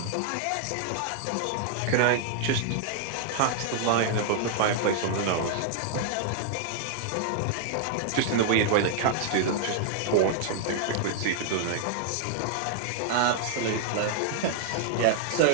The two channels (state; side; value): different; both; correlation -0.01